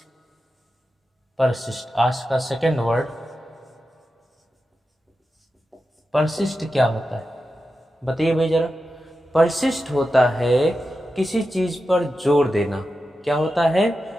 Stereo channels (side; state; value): both; normal; correlation 0.91